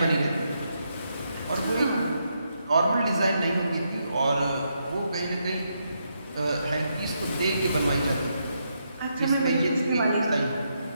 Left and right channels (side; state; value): both; inverted; correlation -0.80